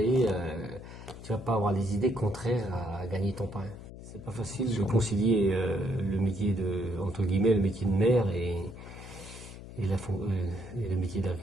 avoir des idées contraires à gagner ton pain. C'est pas facile de concilier le métier entre guillemets, le métier de maire et le métier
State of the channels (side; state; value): left; noise; hum, 14 dB below the sound